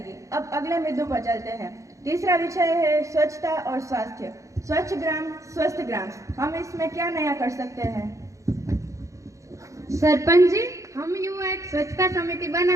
अब अगले मुद्दों पर चलते हैं। तीसरा विषय है स्वच्छता और स्वास्थ्य। स्वच्छ ग्राम स्वस्थ ग्राम, हम इसमें क्या नया कर सकते हैं? सरपंच जी, हम युवा एक स्वच्छता समिति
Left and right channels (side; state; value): left; late; 0.15 ms